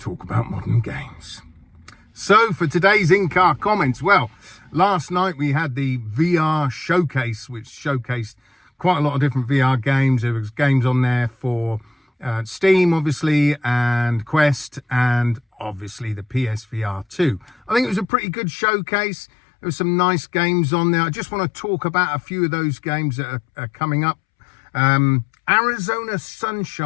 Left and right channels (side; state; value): right; drops out; at 18.1 s